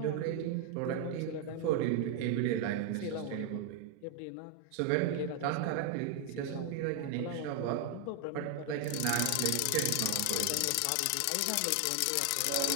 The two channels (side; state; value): both; different; correlation 0.00